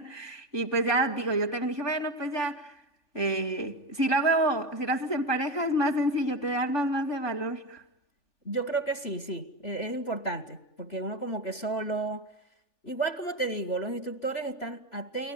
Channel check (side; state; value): right; late; 3.4 ms